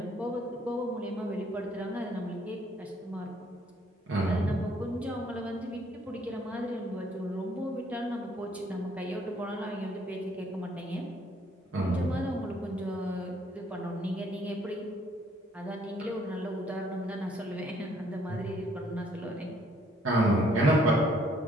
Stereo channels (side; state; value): both; normal; correlation 0.65